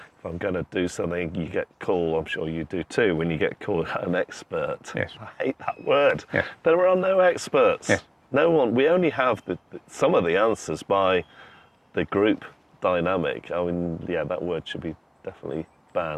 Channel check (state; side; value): identical; both; correlation 1.00